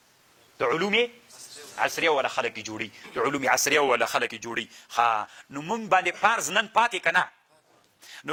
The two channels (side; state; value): both; identical; correlation 1.00